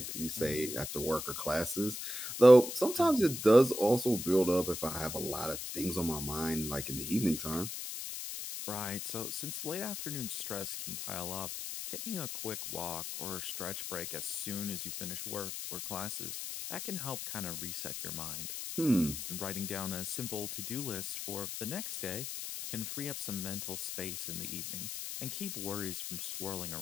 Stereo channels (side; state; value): left; noise; hiss, 6 dB below the sound